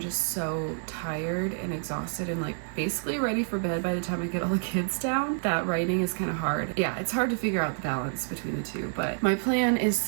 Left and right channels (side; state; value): left; silent; 59 dB below the other